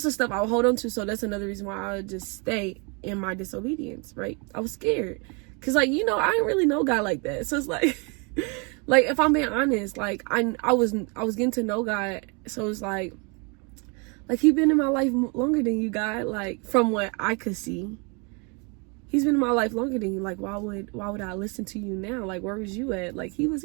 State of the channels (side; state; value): left; quieter; 32.9 dB